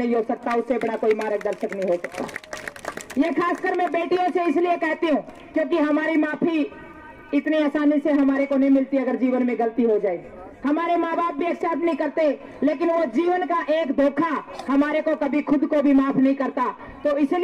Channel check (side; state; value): both; identical; correlation 1.00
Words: हो सकता, उससे बड़ा कोई मार्गदर्शक नहीं हो सकता। ये खासकर मैं बेटियों से इसलिए कहती हूँ क्योंकि हमारी माफी इतनी आसानी से हमारे को नहीं मिलती। अगर जीवन में गलती हो जाए, हमारे माँ बाप भी एक्सेप्ट नहीं करते, लेकिन वो जीवन का एक धोखा हमारे को कभी खुद को भी माफ नहीं करता। तो